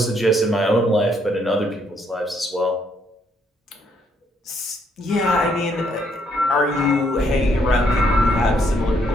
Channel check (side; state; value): both; normal; correlation 0.71